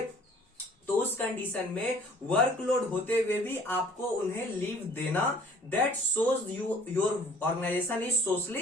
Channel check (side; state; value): both; normal; correlation 0.53